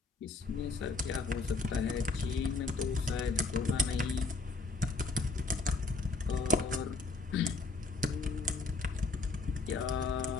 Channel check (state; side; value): quieter; right; 3.8 dB